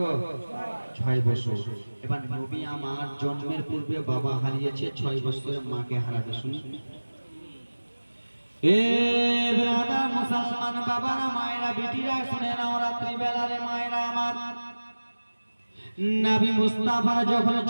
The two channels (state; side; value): inverted; both; correlation -1.00